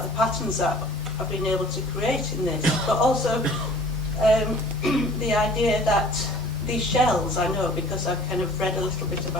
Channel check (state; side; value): normal; both; correlation 0.49